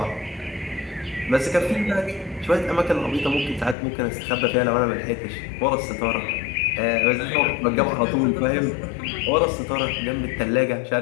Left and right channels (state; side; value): drops out; right; at 3.8 s